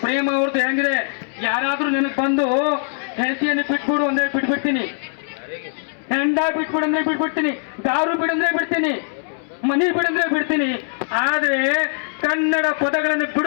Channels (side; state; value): right; silent; digital silence